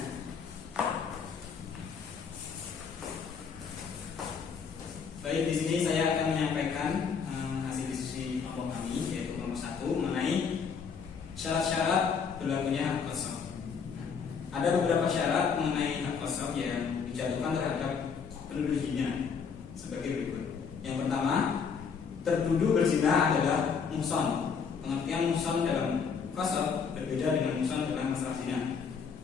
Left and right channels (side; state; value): right; quieter; 6.1 dB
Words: Baik, di sini saya akan menyampaikan hasil diskusi kelompok kami, yaitu kelompok 1 mengenai syarat-syarat berlakunya hak kosong. Ada beberapa syarat mengenai hak kosong yang dijatuhkan terhadap penuduh zina sebagai berikut. Yang pertama, tertuduh berzina adalah muhson. Pengertian muhson dalam kosong berbeda dengan muhson dalam masalah zina.